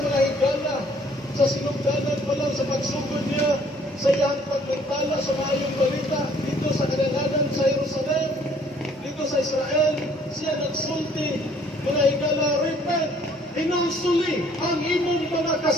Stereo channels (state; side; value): normal; both; correlation 0.60